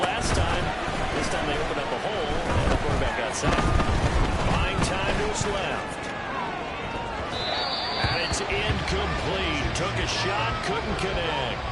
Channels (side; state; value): both; identical; correlation 1.00